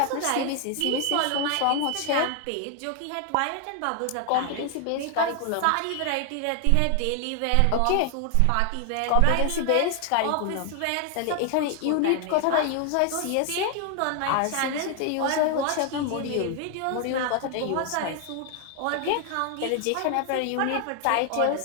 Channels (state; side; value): different; both; correlation 0.00